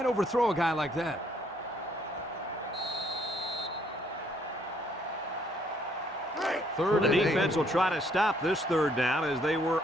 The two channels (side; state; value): both; normal; correlation 0.67